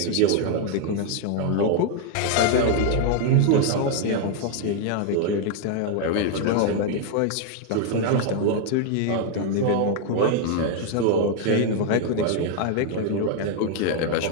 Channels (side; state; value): both; different; correlation 0.00